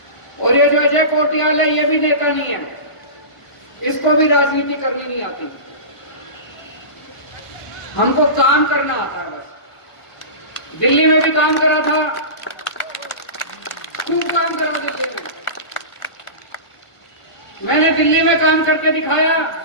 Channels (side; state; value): right; late; 1.4 ms